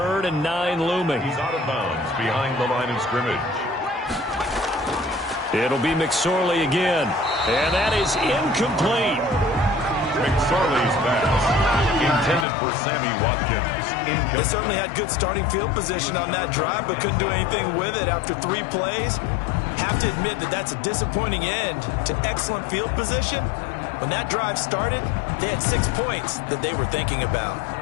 and 9 looming. He's out of bounds behind the line of scrimmage. It'll be McSorley again. And that is incomplete. McSorley's pass intended for Sammy Watkins. They certainly had good starting field position on that drive, but couldn't do anything with it after 3 plays. Have to admit that that's a disappointing end to excellent field position. When that drive started, they had 6 points that they were thinking about.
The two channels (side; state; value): right; drops out; at 12.5 s